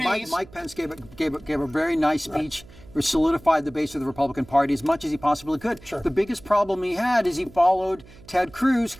Pence gave a very nice speech, which solidified the base of the Republican Party as much as he possibly could. Sure. The biggest problem he had is he followed Ted Cruz,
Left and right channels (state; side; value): noise; right; hum, 22 dB below the sound